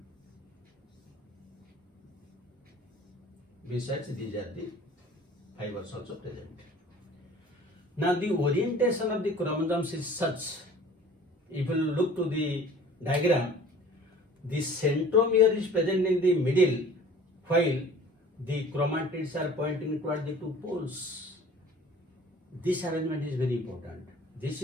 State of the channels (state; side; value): normal; both; correlation 0.47